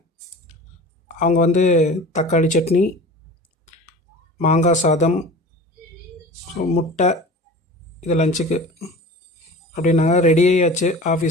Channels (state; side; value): normal; both; correlation 0.38